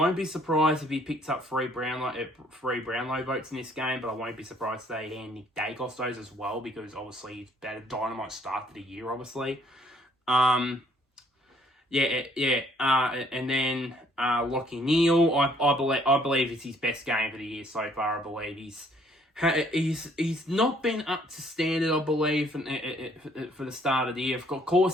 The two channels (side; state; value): both; normal; correlation 0.63